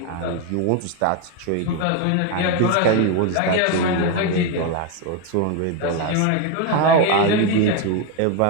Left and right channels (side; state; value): both; different; correlation 0.01